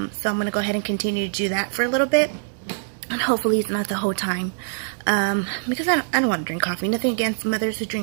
going to go ahead and continue to do that for a little bit, and hopefully it's not the whole time. Because I don't want to drink coffee. Nothing against mothers who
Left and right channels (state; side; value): silent; left; digital silence